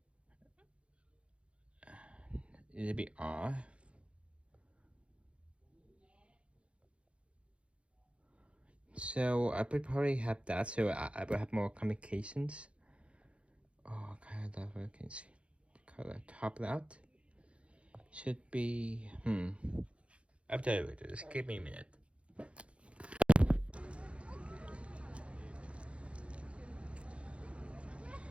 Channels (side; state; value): left; late; 0.060 ms